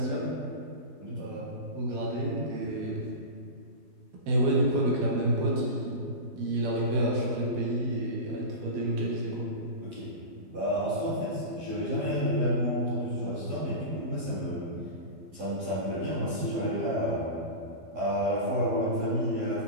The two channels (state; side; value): late; left; 12 ms